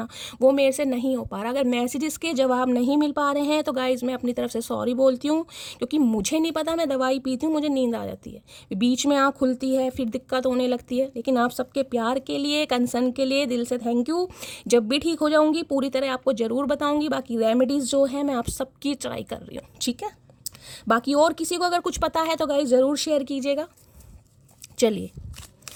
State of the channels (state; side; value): identical; both; correlation 1.00